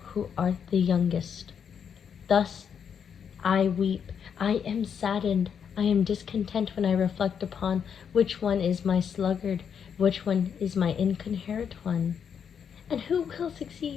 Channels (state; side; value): quieter; right; 7.5 dB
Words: who art the youngest. Thus I weep, I am saddened, I am discontent when I reflect upon which one is my sluggard, which one is my incoherent one. And who will